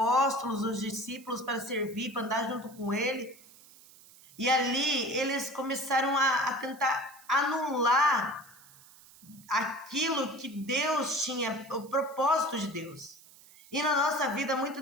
os discípulos para servir, para andar junto com ele. E ali eles começaram a tentar anular aquilo que Deus tinha, o propósito de Deus. E na nossa vida,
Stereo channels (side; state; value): right; noise; hiss, 23 dB below the sound